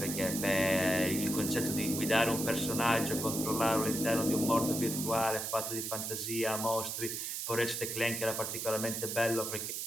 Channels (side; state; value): right; noise; hiss, 3 dB below the sound